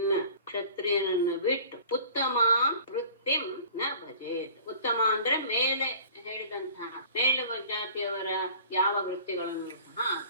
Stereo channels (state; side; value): inverted; both; correlation -0.46